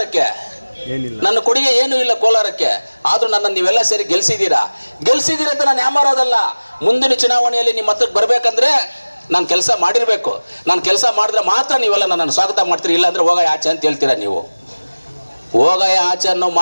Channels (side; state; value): both; inverted; correlation -1.00